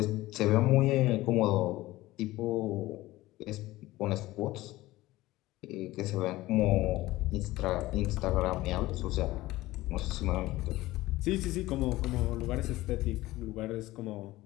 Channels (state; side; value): quieter; right; 17.8 dB